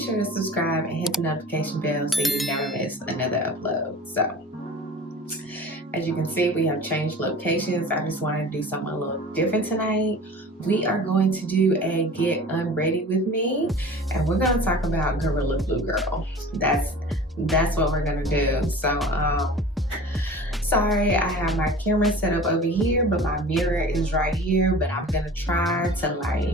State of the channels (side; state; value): both; normal; correlation 0.40